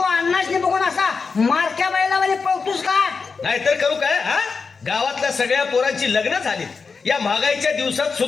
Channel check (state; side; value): quieter; right; 4.9 dB